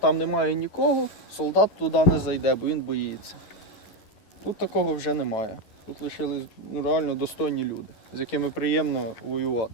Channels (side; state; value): right; late; 11 ms